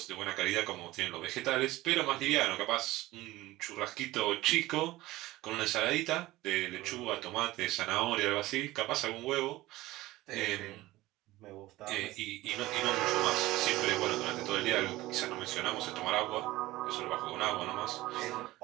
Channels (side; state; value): left; quieter; 17.9 dB